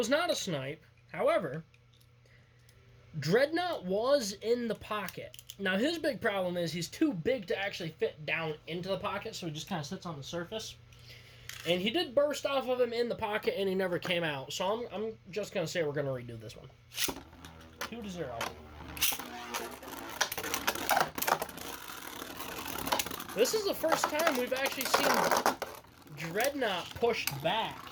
not a snipe. However, Dreadknot was in the pocket. Now, his big problem is he's too big to actually fit down into the pocket, so he just kind of sits on the surface. And he did burst off of him in the pocket, and he never came out. So I'm just going to say we're going to redo this one. 2 to 0. This is the first time we've actually seen Dreadknot pushed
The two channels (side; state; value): both; identical; correlation 1.00